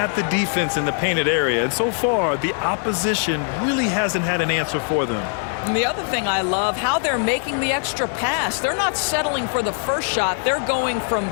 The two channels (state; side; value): silent; right; 56 dB below the other